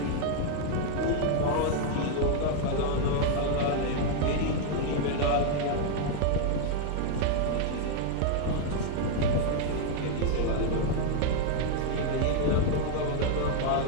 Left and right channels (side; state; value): both; different; correlation 0.00